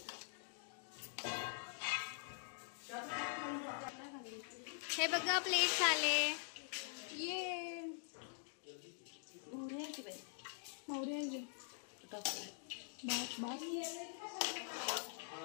हे बघा प्लेट झाले. ये मोहरी आहे की बाई मोहरी आहे. टाकू. बस बस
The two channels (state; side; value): silent; right; digital silence